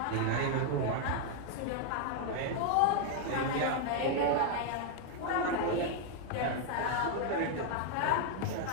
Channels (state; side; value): different; both; correlation 0.00